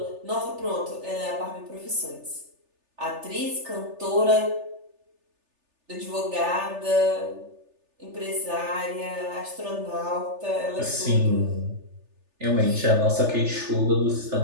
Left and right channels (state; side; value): late; left; 3.4 ms